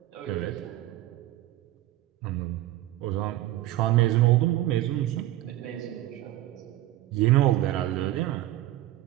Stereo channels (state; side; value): quieter; left; 15.1 dB